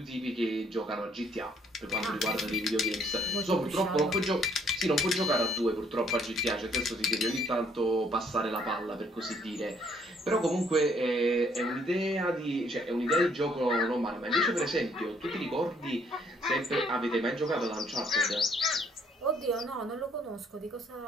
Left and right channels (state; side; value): normal; both; correlation 0.65